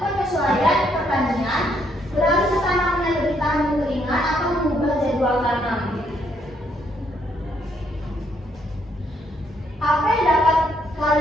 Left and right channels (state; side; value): normal; both; correlation 0.72